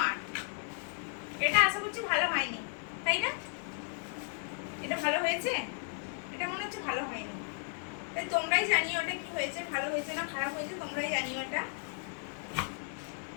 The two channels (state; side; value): silent; right; 55 dB below the other